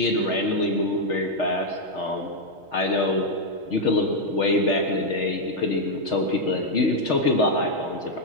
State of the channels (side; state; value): left; late; 6.4 ms